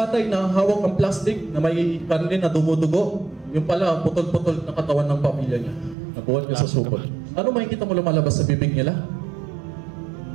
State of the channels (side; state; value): left; drops out; at 6.0 s